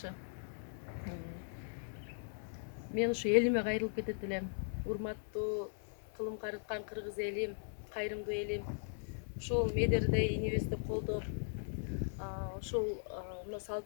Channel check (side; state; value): right; silent; digital silence